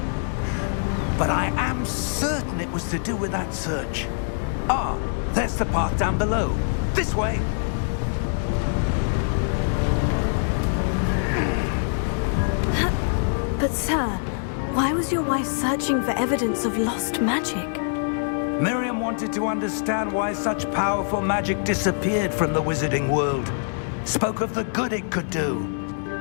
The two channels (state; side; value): silent; right; digital silence